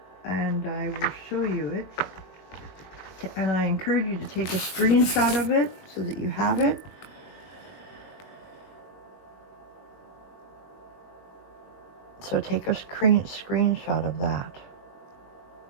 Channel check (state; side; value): late; right; 21 ms